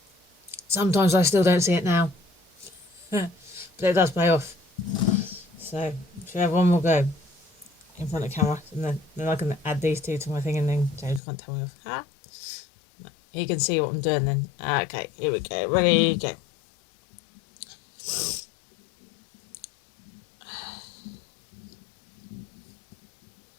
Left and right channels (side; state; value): right; drops out; at 11.2 s